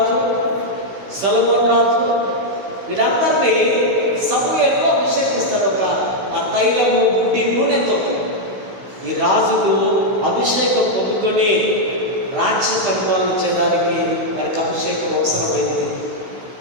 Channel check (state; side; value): late; left; 16 ms